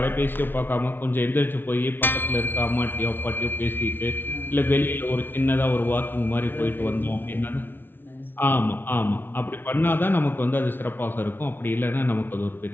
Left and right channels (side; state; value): right; late; 0.10 ms